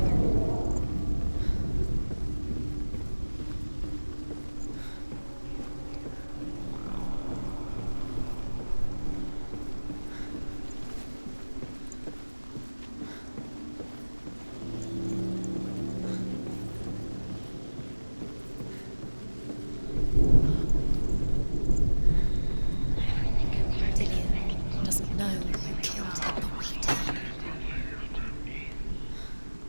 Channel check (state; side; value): inverted; both; correlation -1.00